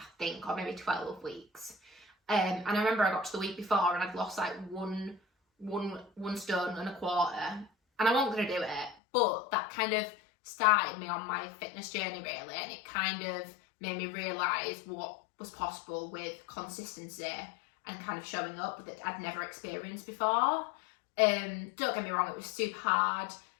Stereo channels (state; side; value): drops out; right; at 9.0 s